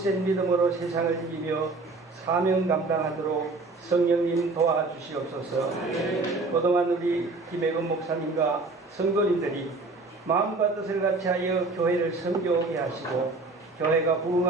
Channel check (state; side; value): quieter; left; 3.6 dB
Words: 믿음으로 세상을 이기며 사명 감당하도록 성령님 도와주시옵소서. 그동안 우리 김혜근 목사님과 성도님들이 마음과 뜻을 같이하여 교회를 섬겨오게 하시고 교회가